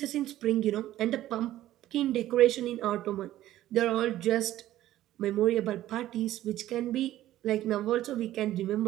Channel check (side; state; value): left; quieter; 13.9 dB